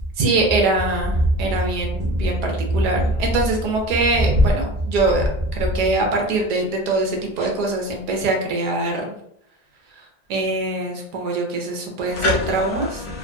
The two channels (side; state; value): left; late; 1.9 ms